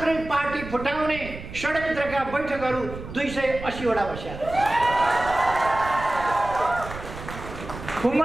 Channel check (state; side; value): noise; right; rumble, 12 dB below the sound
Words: पार्टी फुटाउने षड्यन्त्रका बैठकहरू 280 वटा बस्या।